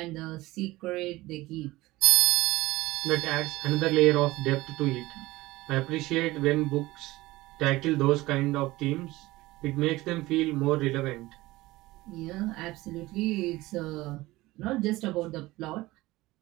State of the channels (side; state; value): left; quieter; 19.1 dB